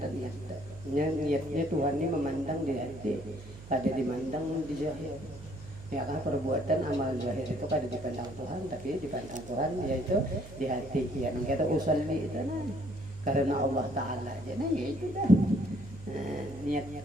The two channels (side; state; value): right; noise; hum, 16 dB below the sound